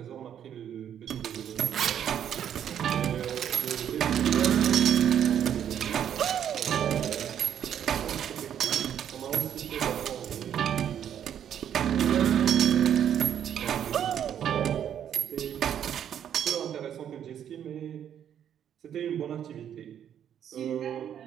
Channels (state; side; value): quieter; left; 9.5 dB